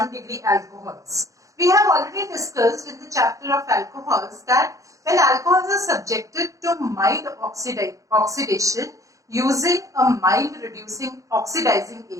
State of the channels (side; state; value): left; late; 0.16 ms